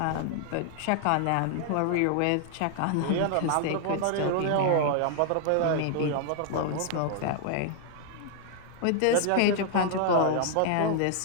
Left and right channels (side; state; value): both; different; correlation 0.00